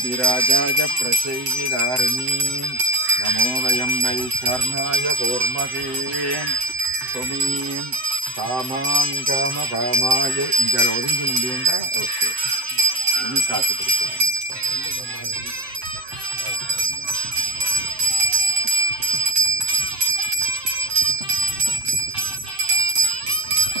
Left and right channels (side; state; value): left; late; 7.8 ms